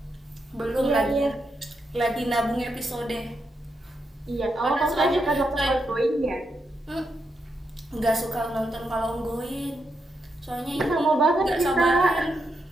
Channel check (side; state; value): both; normal; correlation 0.83